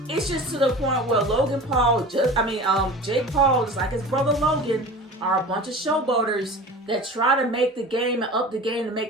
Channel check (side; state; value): both; normal; correlation 0.37